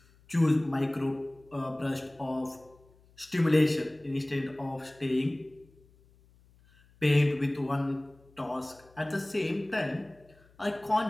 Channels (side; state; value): left; noise; hum, 29 dB below the sound